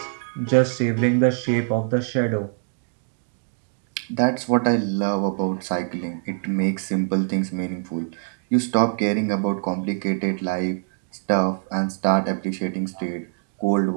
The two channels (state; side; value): silent; left; 63 dB below the other